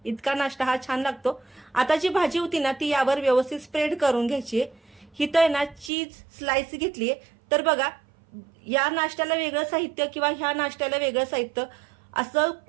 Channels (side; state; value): left; drops out; at 5.9 s